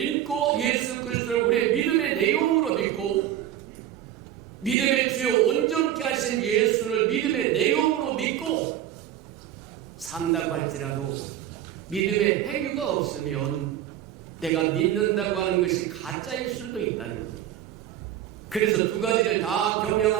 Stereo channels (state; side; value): quieter; left; 11.6 dB